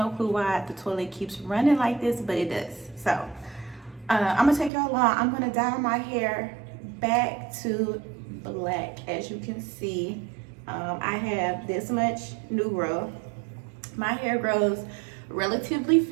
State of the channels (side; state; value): left; drops out; at 4.7 s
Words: clue why the toilet keeps running like this, but it does. So I'm gonna take y'all along. I'm gonna dye my hair back to black. As you can see, I have this much new growth. My hair grows relatively